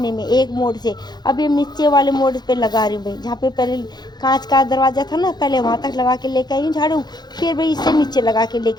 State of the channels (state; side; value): late; right; 0.20 ms